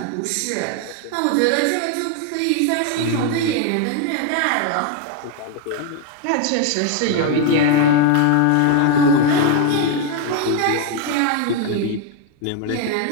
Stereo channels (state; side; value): different; both; correlation 0.01